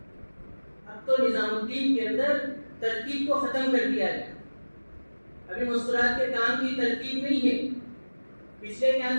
اب تو نظام الدین کے اندر ترتیب کو ختم کر دیا گیا. ابھی مستورات کے کام کی ترتیب نہیں ہے. پچھلے کیا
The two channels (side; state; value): both; inverted; correlation -1.00